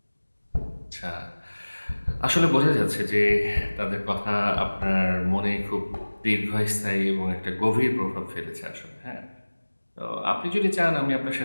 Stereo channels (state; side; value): inverted; both; correlation -1.00